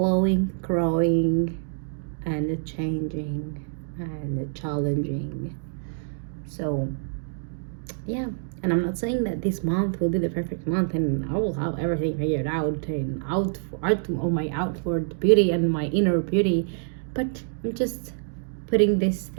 growing, and changing and challenging. So yeah, and I'm not saying that this month will be the perfect month and I will have everything figured out and on my outward beauty and my inner beauty, but I'm just putting this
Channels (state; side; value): silent; left; digital silence